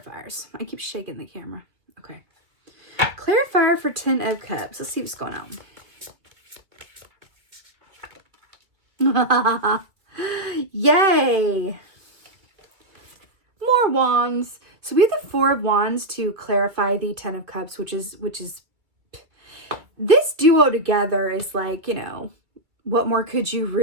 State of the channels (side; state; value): left; late; 2.0 ms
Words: I keep shaking the camera. Okay. Clarifier for 10 of Cups. Let's see what's going on. Yay! More wands. So we have the 4 of Wands to clarify the 10 of Cups, which is this duo together is what more could you